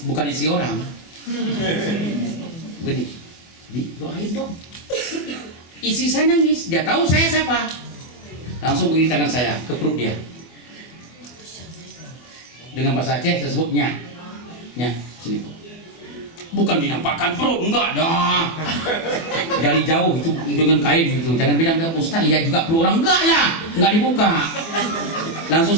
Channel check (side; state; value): right; late; 24 ms